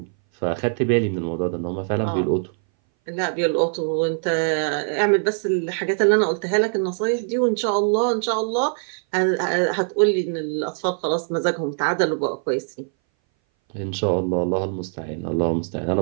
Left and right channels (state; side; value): silent; left; 60 dB below the other